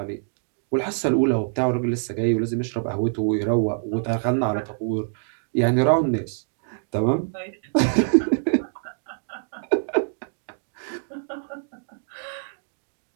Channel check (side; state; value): left; silent; digital silence